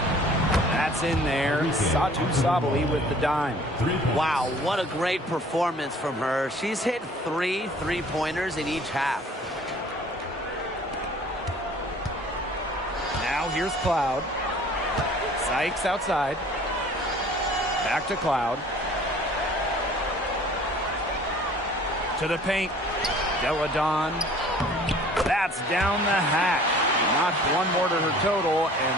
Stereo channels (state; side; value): normal; both; correlation 0.51